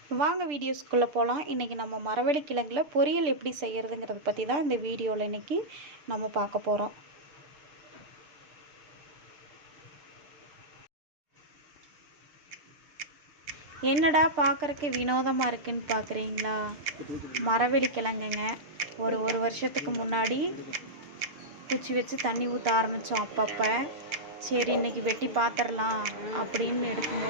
வாங்க வீடியோஸ்குள்ளே போகலாம். இன்றைக்கி நம்ம மரவள்ளி கிழங்குல பொரியல் எப்படி செய்கிறதுங்கிறத பற்றி தான் இந்த வீடியோவில் இன்றைக்கி நம்ம பார்க்க போகிறோம். என்னடா பார்க்குறக்கு வினோதமாக இருக்குன்னு பார்க்குறீங்களா? மரவள்ளி கிழங்குங்க. ஒரு வருஷத்துக்கு முன்னாடி குச்சி வச்சு தண்ணி ஊற்ற ஆரம்பித்தோம். அப்பப்போ சரி இன்றைக்கி வெட்டி பார்த்துடலாம் அப்படின்னு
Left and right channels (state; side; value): late; left; 6.7 ms